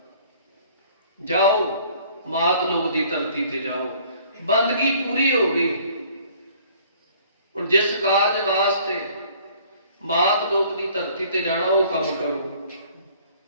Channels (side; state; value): both; inverted; correlation -0.56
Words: ਜਾਓ ਮਾਤ ਲੋਕ ਦੀ ਧਰਤੀ ਤੇ ਜਾਓ। ਬੰਦਗੀ ਪੂਰੀ ਹੋ ਗਈ। ਹੁਣ ਜਿਸ ਕਾਰਜ ਵਾਸਤੇ ਮਾਤ ਲੋਕ ਦੀ ਧਰਤੀ ਤੇ ਜਾਣਾ ਉਹ ਕੰਮ ਕਰੋ।